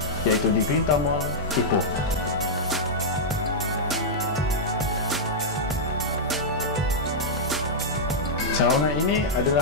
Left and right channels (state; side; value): normal; both; correlation -0.07